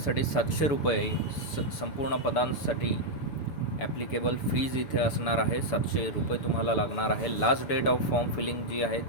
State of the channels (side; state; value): right; late; 6.9 ms